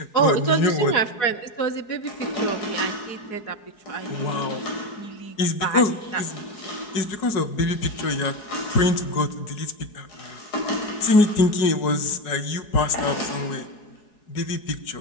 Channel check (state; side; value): late; right; 4.7 ms